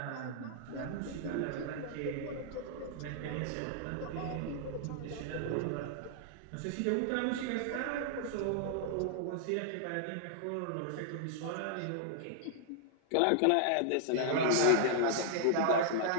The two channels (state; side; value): different; both; correlation -0.01